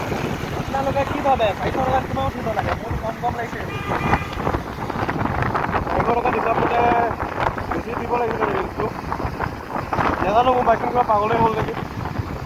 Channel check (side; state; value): both; identical; correlation 1.00